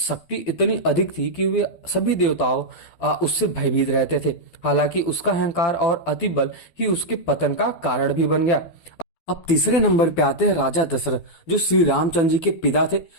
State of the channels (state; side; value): late; right; 12 ms